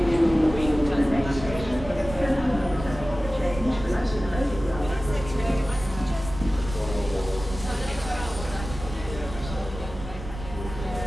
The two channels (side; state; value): right; noise; rumble, 10 dB below the sound